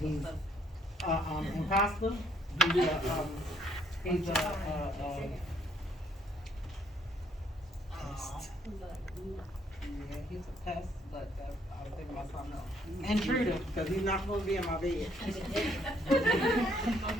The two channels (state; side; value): normal; both; correlation 0.67